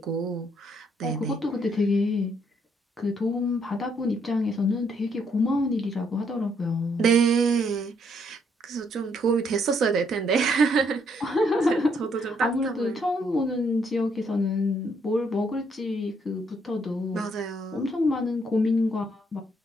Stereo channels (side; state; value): both; normal; correlation 0.71